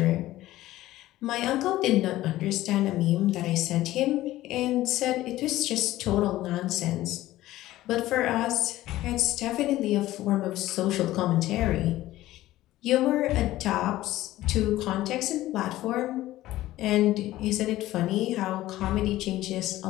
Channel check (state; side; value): quieter; right; 15.7 dB